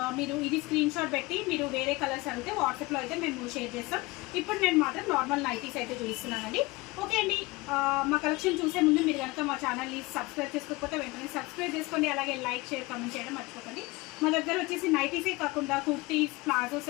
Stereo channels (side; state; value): right; quieter; 22.8 dB